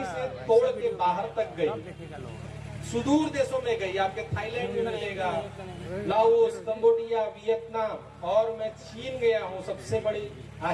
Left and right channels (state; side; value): identical; both; correlation 1.00